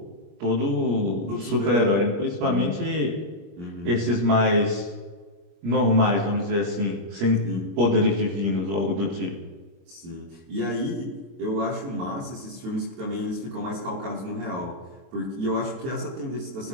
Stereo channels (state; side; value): late; left; 25 ms